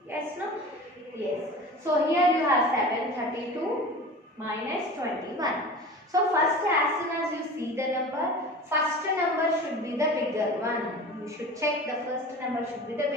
Yes, no? Yes. So here you have 732 minus 21. So first, as soon as you see the number, first number should be the bigger one. You should check the first number should be the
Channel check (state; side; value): normal; both; correlation 0.36